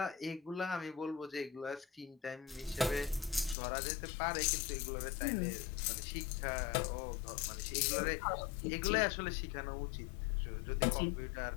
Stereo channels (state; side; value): drops out; right; at 3.6 s